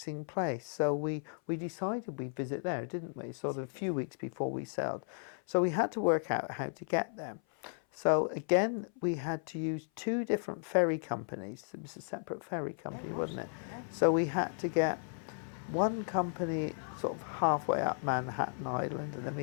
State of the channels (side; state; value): right; silent; 55 dB below the other